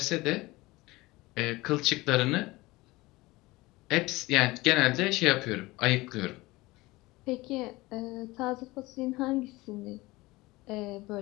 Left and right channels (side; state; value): right; quieter; 20.8 dB